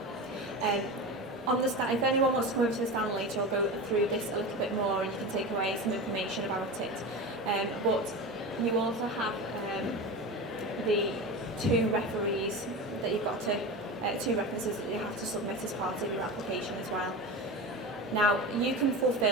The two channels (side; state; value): both; normal; correlation 0.26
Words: If anyone wants to come over to the stand later, I'll go through this a little bit more and you can take away some information about it. But you also have the 2 referees that you've got to, 2 references that you have to submit as part of your application as well. Now, you can